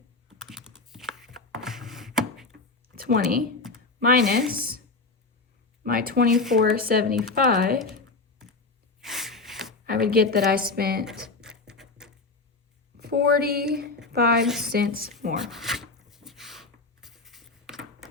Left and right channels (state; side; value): quieter; right; 3.8 dB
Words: minus my 24.75, I would get that I spent 45 cents more.